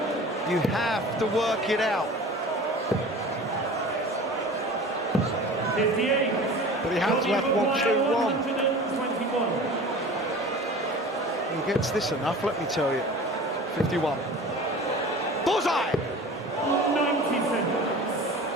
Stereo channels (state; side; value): normal; both; correlation 0.39